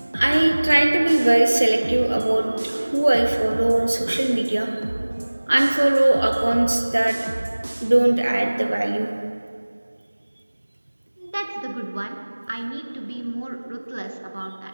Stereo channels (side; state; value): both; inverted; correlation -1.00